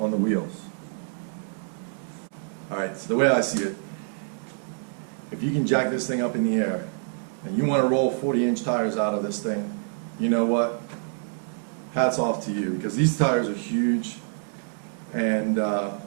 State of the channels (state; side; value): silent; left; digital silence